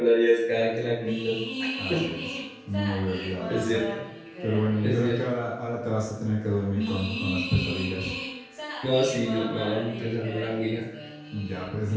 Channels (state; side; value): identical; both; correlation 1.00